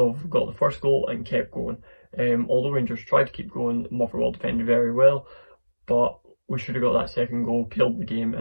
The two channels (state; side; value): inverted; both; correlation -1.00